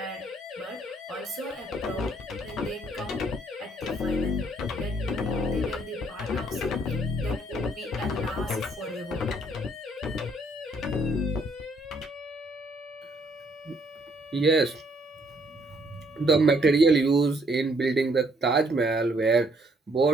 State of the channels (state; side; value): normal; both; correlation 0.67